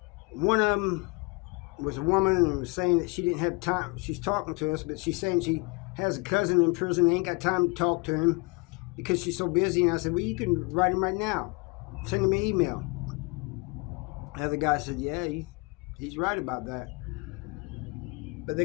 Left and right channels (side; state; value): right; quieter; 27.9 dB